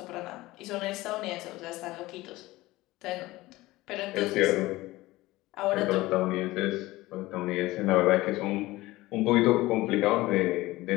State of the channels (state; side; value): quieter; right; 18.8 dB